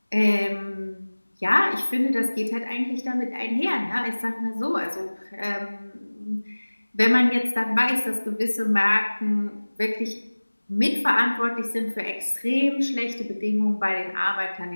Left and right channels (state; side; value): inverted; both; correlation -1.00